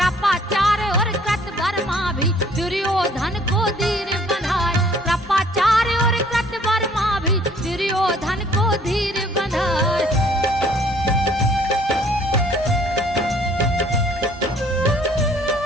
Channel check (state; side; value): normal; both; correlation 0.58